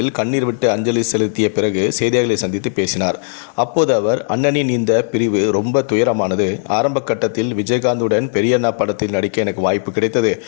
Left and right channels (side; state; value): right; silent; 68 dB below the other